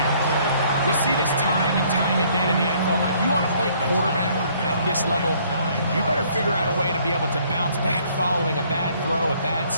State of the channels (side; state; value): both; inverted; correlation -0.62